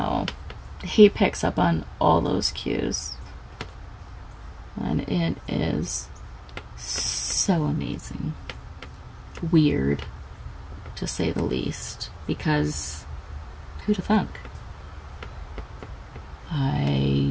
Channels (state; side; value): identical; both; correlation 1.00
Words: he picks up on all those cues, and it is so amazing. Weird, to say the least, because who'd have thunk? I